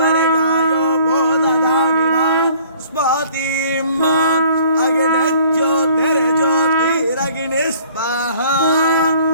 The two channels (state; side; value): inverted; both; correlation -0.55